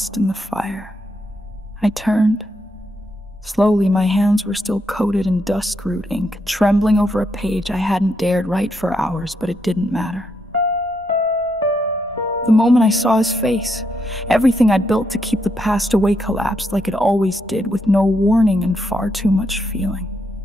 in the fire. I turned. Slowly, my hands were still coated in dusk-root ink, trembling over a page I hadn't dared write for hours, but it didn't matter. The moment I saw his face, everything I'd built to keep the past away collapsed like it always did, with no warning and far too much feeling.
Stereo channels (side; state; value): both; normal; correlation 0.79